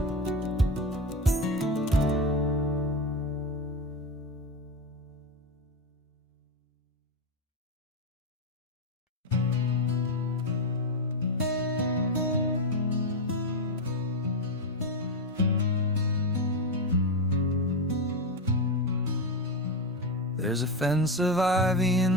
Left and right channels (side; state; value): both; normal; correlation 0.12